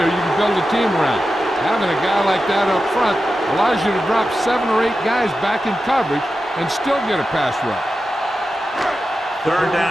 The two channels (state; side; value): normal; both; correlation 0.92